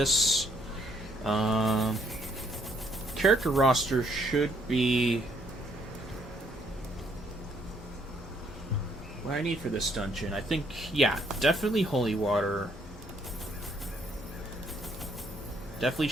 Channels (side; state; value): both; normal; correlation 0.68